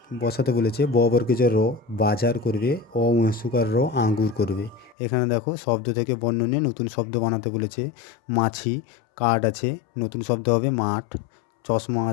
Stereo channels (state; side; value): drops out; right; at 5.0 s